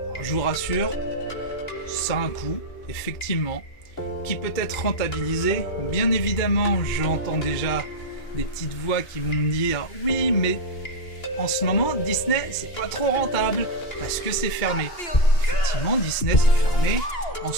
Alors, je vous rassure, ça a un coût, effectivement, qui peut être rentabilisé. Bien évidemment, j'entends déjà des petites voix qui vont me dire oui, mais en ce moment Disney c'est pas trop rentable parce que c'est fermé. Effectivement, Disney c'est fermé. En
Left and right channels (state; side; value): late; right; 2.3 ms